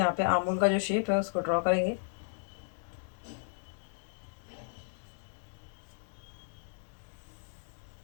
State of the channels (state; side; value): silent; right; digital silence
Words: पे आर्म होल का जो शेप है उसको ड्रॉ करेंगे।